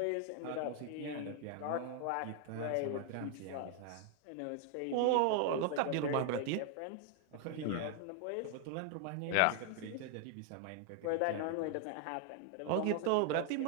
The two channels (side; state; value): both; different; correlation 0.00